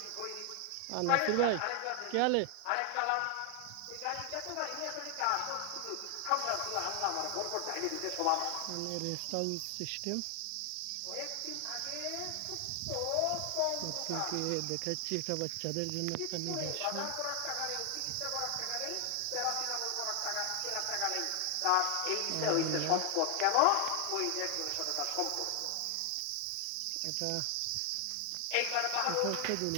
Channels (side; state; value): both; different; correlation 0.00